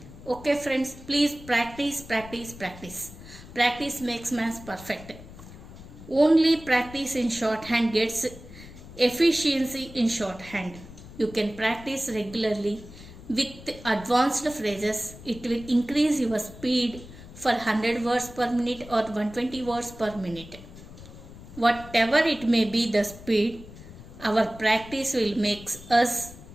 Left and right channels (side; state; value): left; noise; rumble, 17 dB below the sound